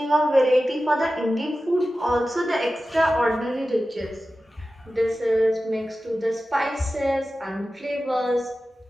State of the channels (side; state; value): both; normal; correlation 0.94